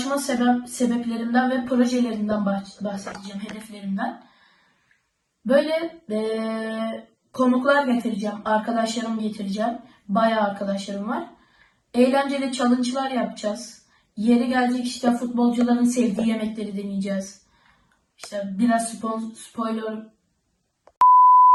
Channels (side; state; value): both; identical; correlation 1.00